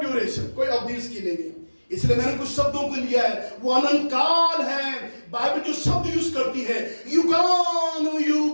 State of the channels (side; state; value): both; inverted; correlation -1.00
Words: कोई अवधि इसकी नहीं है। इसलिए मैंने कुछ शब्दों को लिया है, वो अनंत काल है। बाइबल जो शब्द यूज करती है,